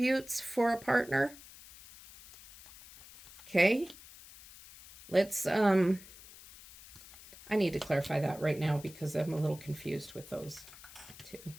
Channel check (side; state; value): left; noise; hiss, 19 dB below the sound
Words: for a partner? Okay. Let's, I need to clarify that right now because I'm a little confused with those 2.